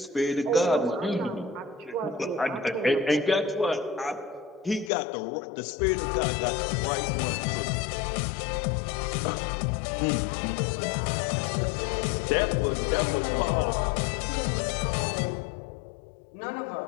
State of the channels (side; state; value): right; drops out; at 4.9 s